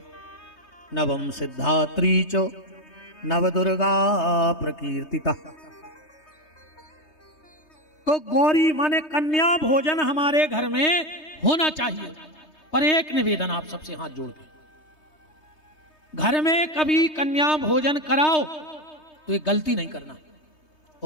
नवम सिद्धात्री च, नवदुर्गा प्रकीर्तिता। तो गौरी माने कन्या भोजन हमारे घर में होना चाहिए। पर एक निवेदन आप सबसे हाथ जोड़ के, घर में कभी कन्या भोजन कराओ तो ये गलती नहीं करना,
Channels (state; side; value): late; right; 3.2 ms